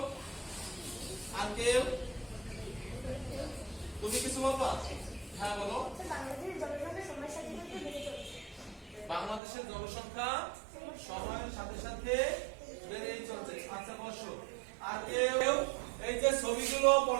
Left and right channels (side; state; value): left; drops out; at 9.4 s